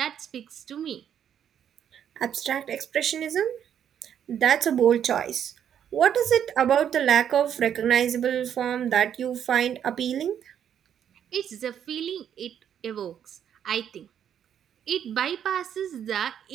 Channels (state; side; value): quieter; left; 9.2 dB